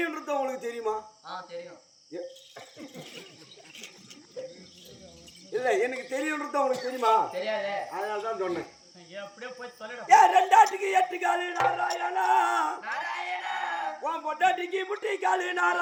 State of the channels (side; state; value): both; identical; correlation 1.00